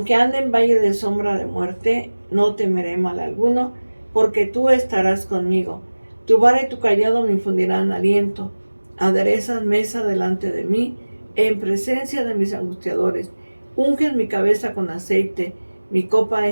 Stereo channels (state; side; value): inverted; both; correlation -1.00